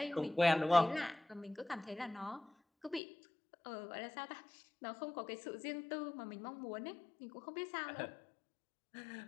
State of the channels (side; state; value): right; drops out; at 3.0 s